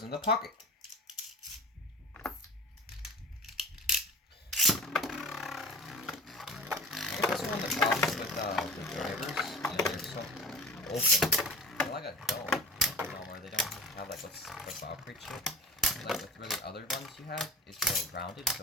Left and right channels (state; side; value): normal; both; correlation 0.36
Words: in the pocket. I guess that's one of the problems with the drivers. You know, they're so open. They're like a dome. You know, where they don't have like what's the Valkyrie chip. Like with really other ones you have, it's more rounded,